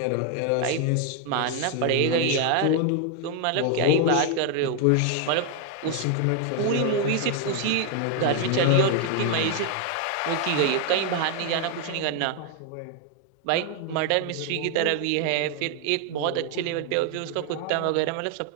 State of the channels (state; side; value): different; both; correlation 0.00